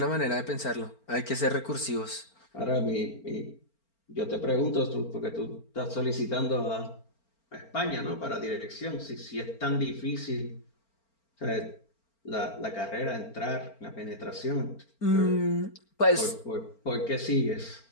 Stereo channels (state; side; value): late; right; 4.4 ms